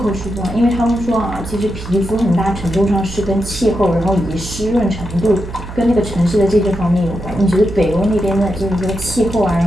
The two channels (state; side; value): noise; right; hum, 11 dB below the sound